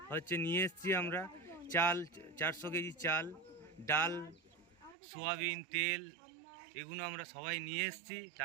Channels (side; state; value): left; drops out; at 5.0 s